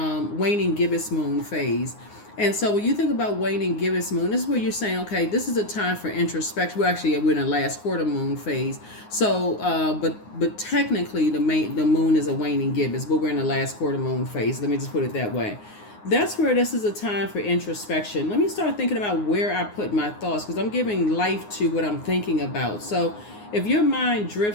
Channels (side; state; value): right; late; 9.6 ms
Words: gibbous moon phase. And so when you think about waning gibbous moon, this is where you're saying, okay, this is a time for introspection. We're in the last quarter moon phase. So, but technically the moon is a waning gibbous, but we're in the last quarter moon phase. Let me just put it that way. That's where this is a time for introspection. Let me start thinking about where I put my thoughts, because I'm giving life to what I'm thinking about. So if your mind